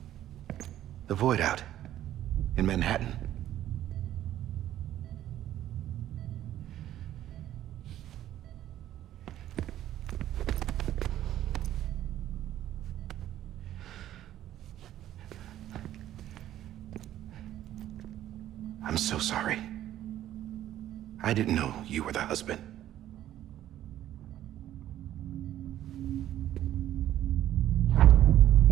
The Void out. In Manhattan. I'm so sorry. I didn't know you were the husband.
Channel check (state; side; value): quieter; left; 12.5 dB